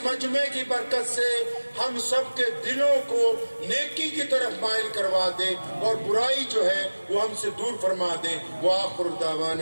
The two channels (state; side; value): inverted; both; correlation -1.00